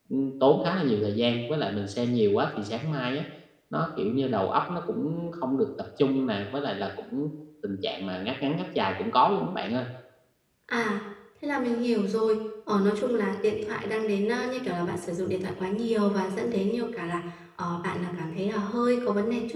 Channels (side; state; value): both; identical; correlation 1.00